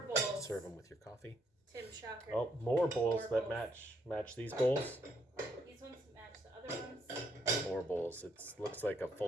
more bowls. Serve them with your coffee. Tim Shocker. Oh, more bowls More that bowls. match these bowls. These ones match the other ones. More bowls. It looks like a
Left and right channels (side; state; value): both; normal; correlation 0.72